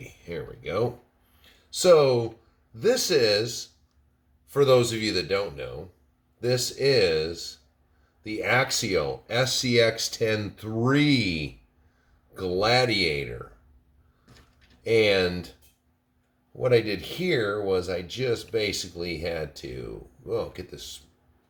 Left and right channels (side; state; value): both; identical; correlation 1.00